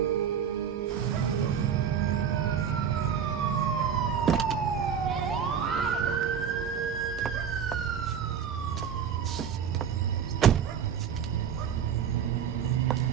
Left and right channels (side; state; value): left; quieter; 7.9 dB